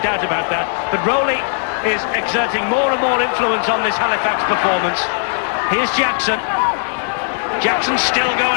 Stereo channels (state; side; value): silent; right; 63 dB below the other